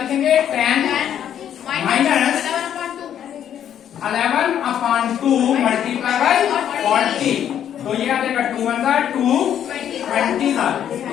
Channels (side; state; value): right; quieter; 9.8 dB